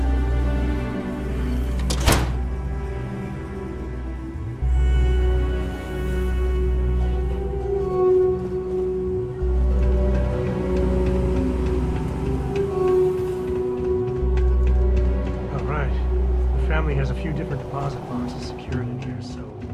Has a few different deposit boxes secured in here, so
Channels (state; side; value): identical; both; correlation 1.00